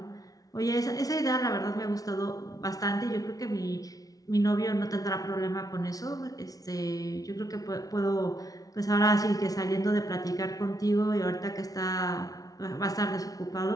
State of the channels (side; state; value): right; late; 0.18 ms